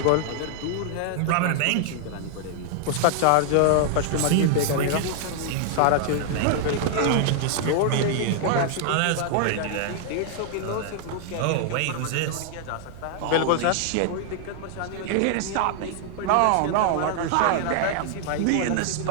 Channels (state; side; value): different; both; correlation 0.00